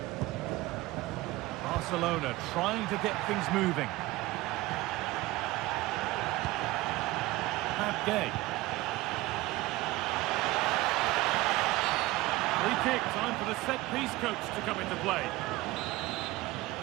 Barcelona trying to get things moving. Gay. Free kick, time for the set-piece coach to come into play.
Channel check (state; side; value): quieter; left; 18.9 dB